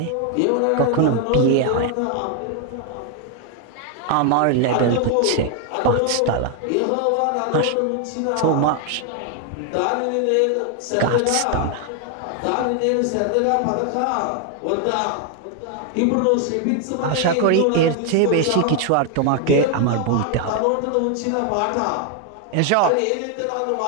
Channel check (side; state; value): both; different; correlation 0.01